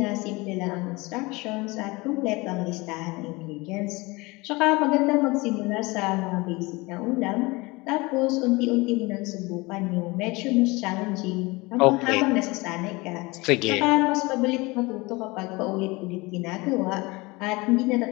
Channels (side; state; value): right; quieter; 23.8 dB